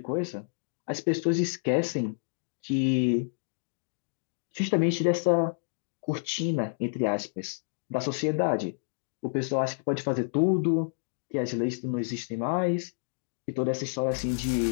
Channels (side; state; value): right; silent; digital silence